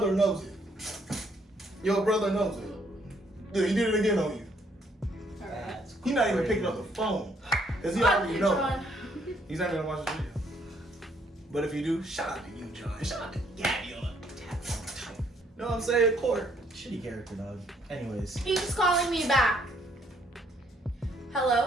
knows it. Your brother knows it. Dude, he did it again on you. Alright. He's not even picking up the phone, because he already knows. John. He's not gonna watch the video. But if you do, shout out to you, John. Shout out to Gabby on it. Know what I'm saying? Court. Shitty character, dog. Anyways. He's calling me back.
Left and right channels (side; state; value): both; normal; correlation 0.68